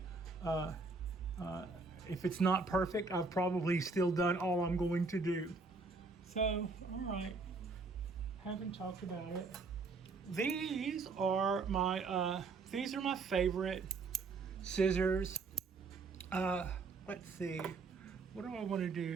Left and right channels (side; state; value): left; quieter; 4.1 dB